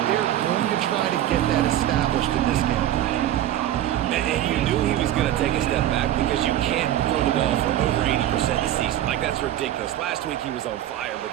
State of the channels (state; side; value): quieter; left; 12.7 dB